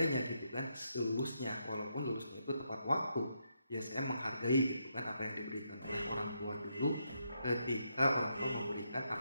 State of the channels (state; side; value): inverted; both; correlation -0.80